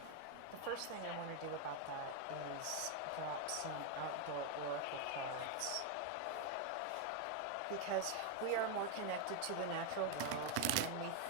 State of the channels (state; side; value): different; both; correlation 0.01